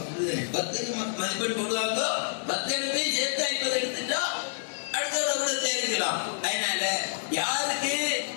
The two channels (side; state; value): right; silent; digital silence